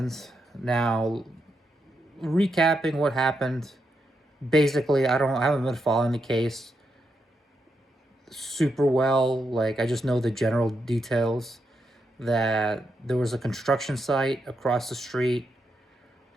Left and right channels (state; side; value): normal; both; correlation 0.83